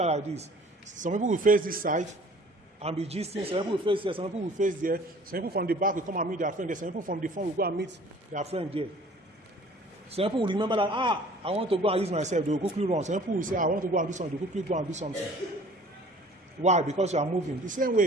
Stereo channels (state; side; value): normal; both; correlation 0.50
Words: like this. Some people will face this side and be gisting. Some people will face there. Some people will face there. Some people from the back will come and meet their friend there. Some people from the front will go and meet their friend there. Some people will remember that, I want to go and use myself. They will quickly run. Some people will say, I want to go and do something. They will quickly go and do something. Why? Because you are moving. The same